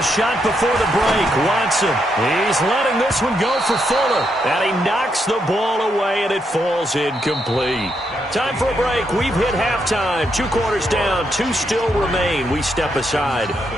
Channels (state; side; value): normal; both; correlation 0.79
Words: shot before the break. Watson, he's letting this one go for Fuller. And he knocks the ball away, and it falls incomplete. Time for a break. We've hit halftime. 2 quarters down. 2 still remain. We step aside.